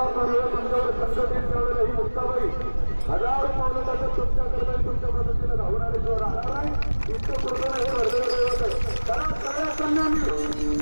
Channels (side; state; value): both; inverted; correlation -1.00